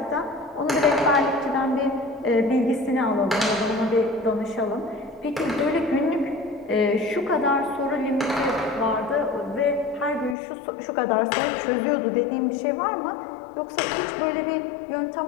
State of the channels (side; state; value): right; drops out; at 10.4 s